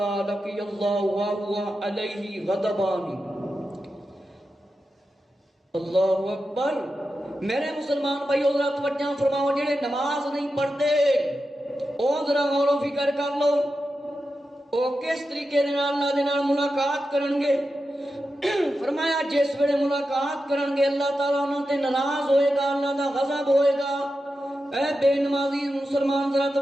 لقی اللہ وهو علیہ غضبان۔ اللہ اکبر۔ میرے مسلمان بھائی ذرا توجہ فرماؤ، جڑے نماز نہیں پڑھتے او ذرا غور و فکر کر لو، او کس طریقے اللہ دے نال ملاقات کرن گے۔ فرمایا جس ویلے ملاقات کرن گے اللہ تعالیٰ انہاں تے ناراض ہوئے گا، اللہ دا غضب ہوئے گا۔ اے بے نمازی مسلمان ذرا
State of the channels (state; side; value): normal; both; correlation 0.90